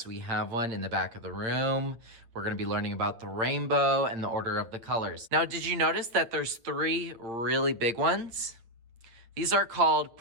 we have one in the back of the room. We're going to be learning about the rainbow and the order of the colors. Now, did you notice that there's 3 really big ones? These are called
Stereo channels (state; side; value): late; left; 8.7 ms